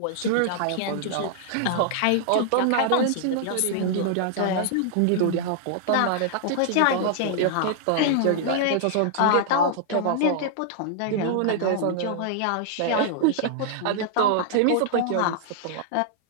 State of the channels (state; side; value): different; both; correlation -0.01